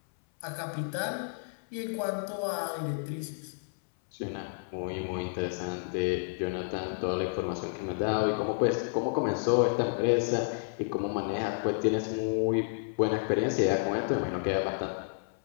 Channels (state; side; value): silent; right; 57 dB below the other